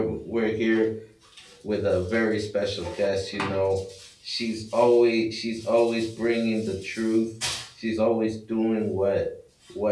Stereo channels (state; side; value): identical; both; correlation 1.00